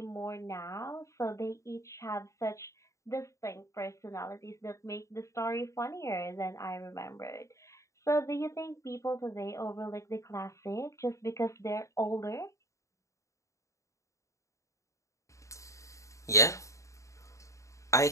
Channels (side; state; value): right; late; 0.15 ms